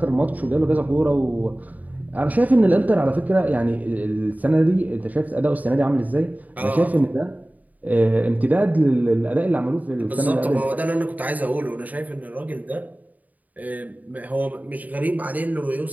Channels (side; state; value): left; late; 0.077 ms